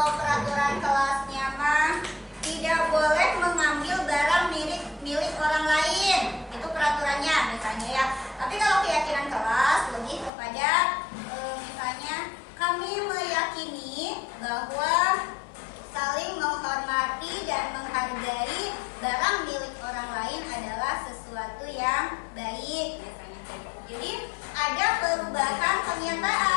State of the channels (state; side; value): drops out; right; at 10.3 s